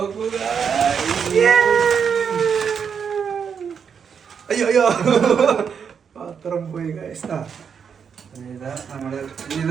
അയ്യോ പാത്രം പോയി ഗൈസ്. നമ്മള്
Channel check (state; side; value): quieter; left; 6.9 dB